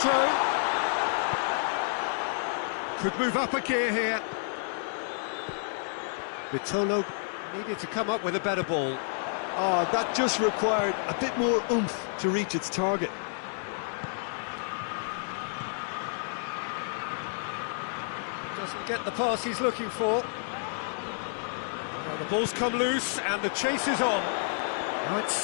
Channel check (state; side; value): silent; right; digital silence